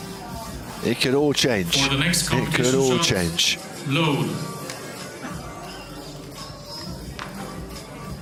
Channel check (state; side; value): identical; both; correlation 1.00